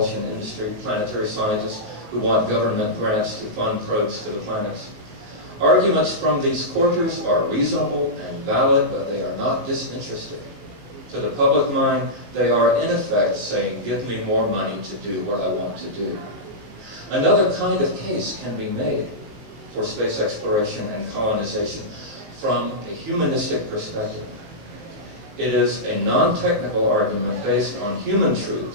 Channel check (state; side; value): late; left; 19 ms